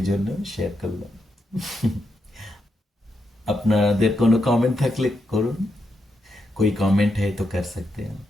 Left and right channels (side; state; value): both; normal; correlation 0.83